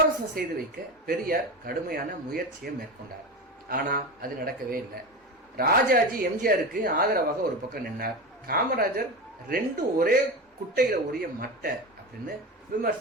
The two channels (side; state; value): both; normal; correlation 0.23